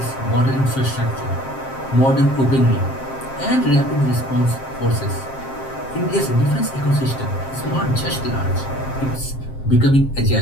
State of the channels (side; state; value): right; late; 7.5 ms